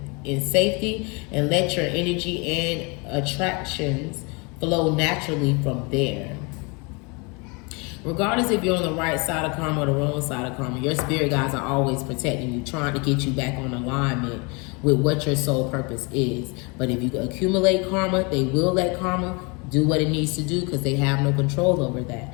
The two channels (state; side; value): quieter; right; 30.2 dB